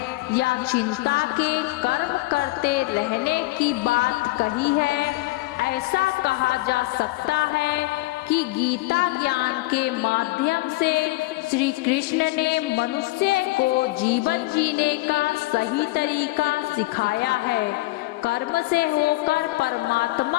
या चिंता के कर्म करते रहने की बात कही है। ऐसा कहा जा सकता है कि गीता ज्ञान के माध्यम से श्री कृष्ण ने मनुष्य को जीवन जीने का सही तरीका सिखाया है। कर्म से होकर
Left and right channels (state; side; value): quieter; right; 20.4 dB